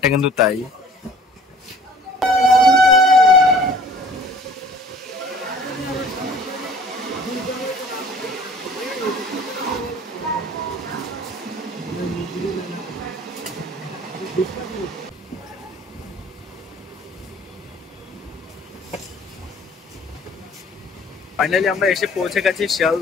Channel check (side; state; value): both; normal; correlation 0.50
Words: কিন্তু তাই। ফাইনালি আমরা এসে পৌঁছে গেছি